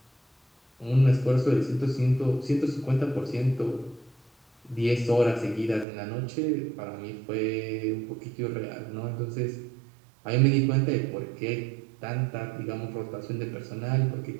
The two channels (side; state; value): left; drops out; at 5.9 s